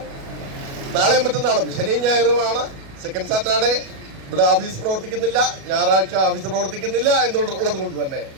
നാളെയും മറ്റന്നാളും ശനിയും ഞായറുമാണ് സെക്കൻഡ് സാറ്റർഡേ. ഇവിടെ ഓഫീസ് പ്രവർത്തിക്കുന്നില്ല, ഞായറാഴ്ച ഓഫീസ് പ്രവർത്തിക്കുന്നില്ല എന്നുള്ളത് കൊണ്ട് തന്നെ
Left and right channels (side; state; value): left; late; 37 ms